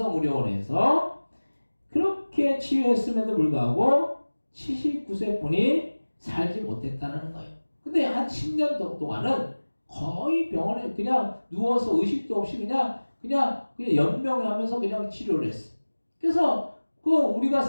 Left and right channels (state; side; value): inverted; both; correlation -1.00